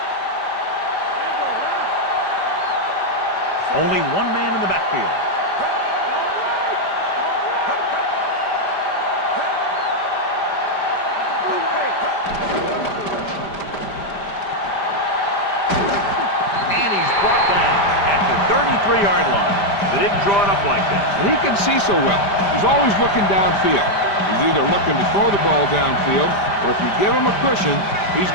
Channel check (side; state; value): right; late; 5.0 ms